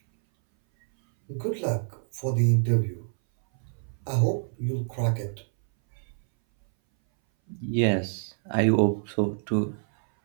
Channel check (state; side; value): silent; left; 59 dB below the other